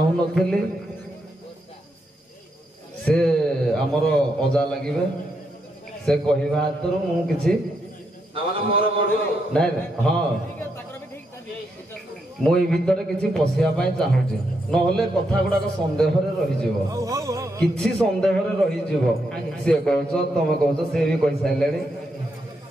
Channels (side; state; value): both; normal; correlation 0.80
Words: ସେ ଆମର ଅଜା ଲାଗିବେ, ସେ କହିବା ହାତରୁ ମୁଁ କିଛି ନାଇଁ ହଁ ମୁଁ ଏଇ ଭିତରେ କିଛି ପଶିବା ପାଇଁ ଚାହୁଁଛି, ନହେଲେ କଥା ଗୁଡାକ ସନ୍ଦେହରେ ରହିଯିବ, କିଛି ସନ୍ଦେହରେ ରହିଯିବ। ସିଏ କହୁଛ ତମେ କହୁଛ, ସେ ବି କହିସାରିଲେଣି।